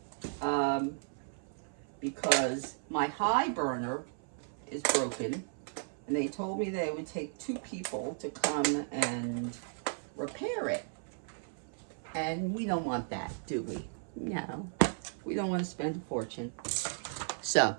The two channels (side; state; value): left; silent; 54 dB below the other